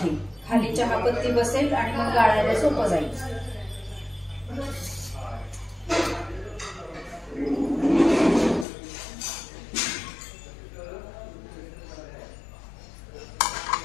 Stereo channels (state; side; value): drops out; right; at 8.7 s